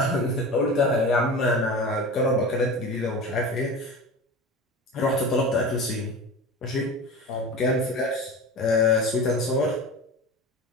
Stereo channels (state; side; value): normal; both; correlation 0.31